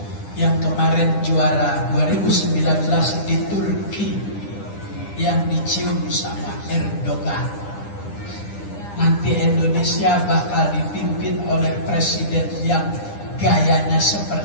yang kemarin juara 2019 di Turki yang dicium sama Erdogan. Nanti Indonesia bakal dipimpin oleh presiden yang gayanya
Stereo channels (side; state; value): right; late; 9.9 ms